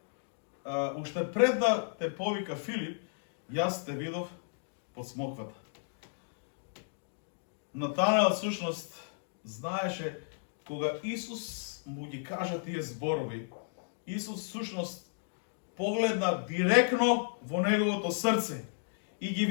уште пред да те повика Филип, јас те видов под смоквата. Натанел всушност знаеше кога Исус му ги кажа тие зборови, Исус всушност погледна директно во неговото срце и ги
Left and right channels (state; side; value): silent; right; digital silence